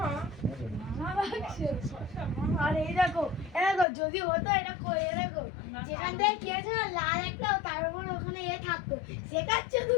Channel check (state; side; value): drops out; right; at 3.9 s